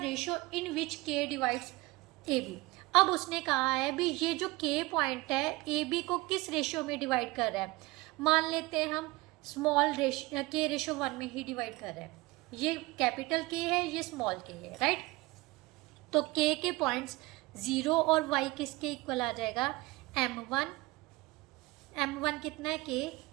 ratio in which k divides AB। अब उसने कहा है भी ये जो k पॉइंट है AB को किस रेशो में डिवाइड कर रहा है। मान लेते हैं हम स्मॉल k/1 में ही डिवाइड कर रहा है। ये कैपिटल K है, ये स्मॉल k है, राइट। तो k के पॉइंट्स 0 और y किसके इक्वल आ जाएगा m1 कितना है k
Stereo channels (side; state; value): left; quieter; 21.6 dB